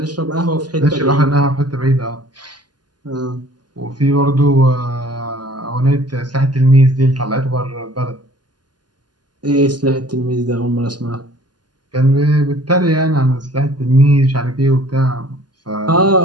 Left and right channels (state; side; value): late; left; 0.70 ms